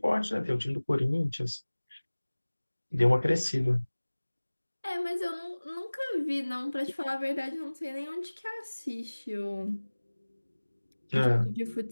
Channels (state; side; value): inverted; both; correlation -1.00